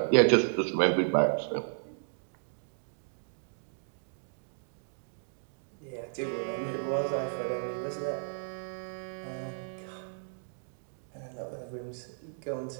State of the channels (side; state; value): left; silent; digital silence